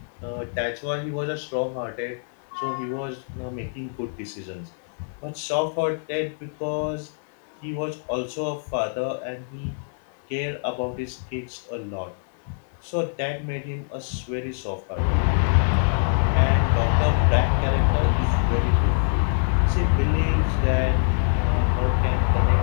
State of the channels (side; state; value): right; silent; 62 dB below the other